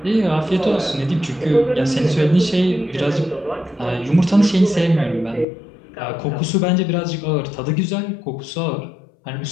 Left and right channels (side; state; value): right; drops out; at 5.5 s